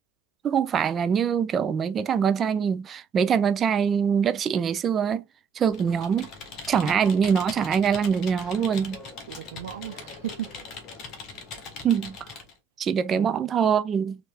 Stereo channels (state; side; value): quieter; left; 6.9 dB